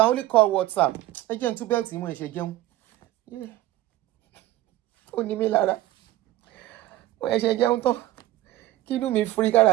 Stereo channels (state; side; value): quieter; left; 15.7 dB